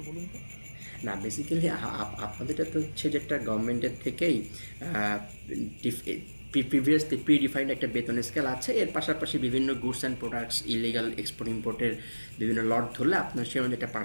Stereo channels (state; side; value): inverted; both; correlation -1.00